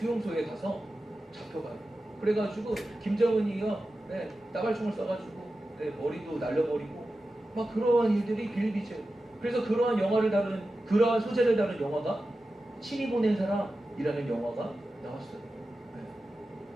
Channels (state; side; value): normal; both; correlation 0.93